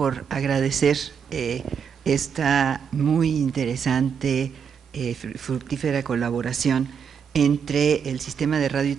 agradecer esta muy interesante, fructífera colaboración entre el Sistema de Radio y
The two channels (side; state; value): left; quieter; 7.0 dB